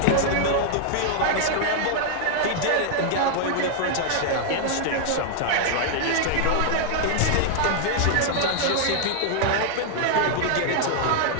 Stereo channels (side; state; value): both; different; correlation -0.01